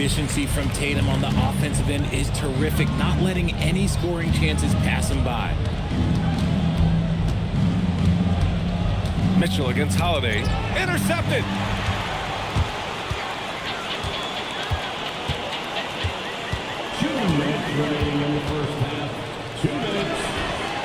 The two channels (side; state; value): both; identical; correlation 1.00